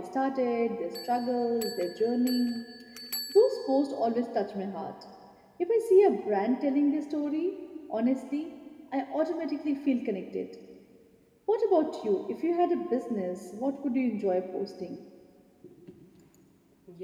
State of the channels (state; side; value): identical; both; correlation 1.00